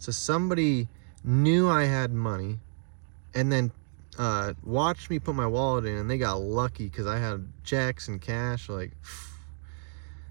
somebody knew I had money, and then watched me put my wallet in, and they got lucky because I had checks and cash, like.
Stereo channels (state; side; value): silent; left; 58 dB below the other